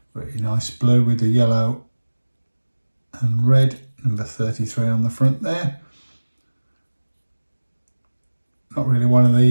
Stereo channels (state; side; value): inverted; both; correlation -1.00